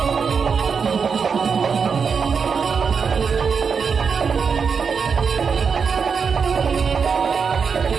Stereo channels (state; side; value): quieter; left; 5.9 dB